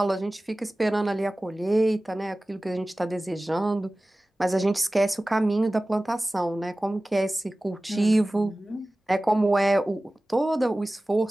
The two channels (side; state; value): both; normal; correlation 0.97